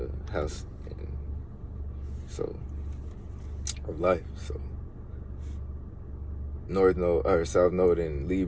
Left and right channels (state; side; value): identical; both; correlation 1.00